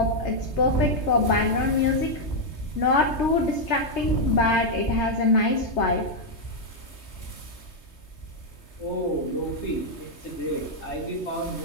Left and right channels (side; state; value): right; late; 3.2 ms